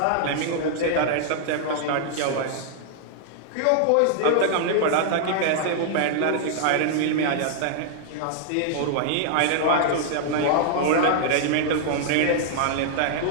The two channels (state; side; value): different; both; correlation -0.01